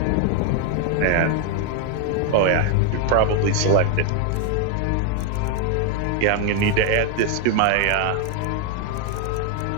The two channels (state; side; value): different; both; correlation 0.01